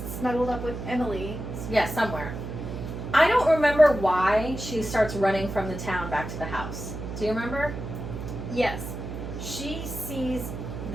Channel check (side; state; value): right; noise; hum, 7 dB below the sound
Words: snuggled up with Emily. Yeah, somewhere. I don't remember why she starts running from the town back to the house. Do you remember? Yes. She sees